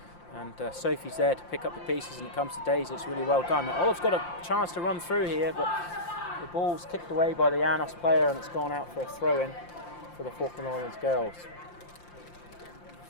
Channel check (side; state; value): right; late; 5.7 ms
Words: and Sophie's there to pick up the pieces, and it comes to Daisy. It's really well done. Now, Olive's got a chance to run through here, but the ball's kicked away by the Llanos player, and it's gone out for a throw-in for the Falkland Islands girls.